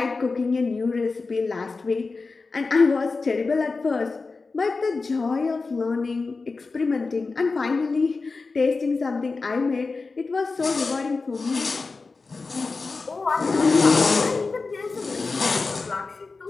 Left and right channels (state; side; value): quieter; right; 4.1 dB